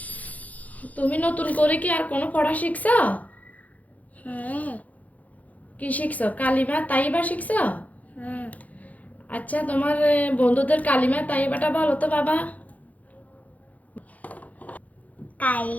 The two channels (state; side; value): late; right; 0.074 ms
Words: তুমি নতুন করে কি আর কোনো পড়া শিখছো? হ্যাঁ কি শিখছো? কালিমা তাইবা শিখছো? হ্যাঁ আচ্ছা, তোমার বন্ধুদের কালিমা তাইবাটা বলো তো বাবা।